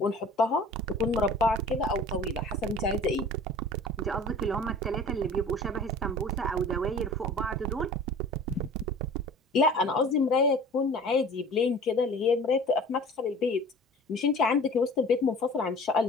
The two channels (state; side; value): normal; both; correlation 0.44